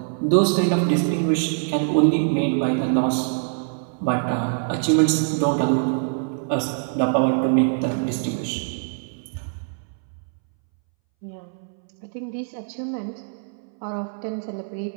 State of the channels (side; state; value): left; silent; 62 dB below the other